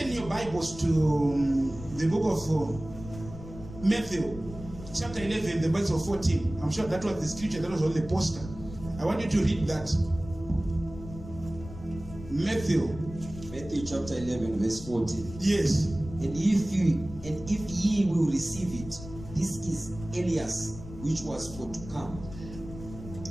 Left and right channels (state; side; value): noise; left; rumble, 14 dB below the sound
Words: your Bibles to the book of Matthew, chapter 11, the verse of 14. I'm sure that was the scripture that was on the poster. I want you to read that. Matthew chapter 11, verse 14. Yes. And if ye will receive it, this is Elias, which was for to come.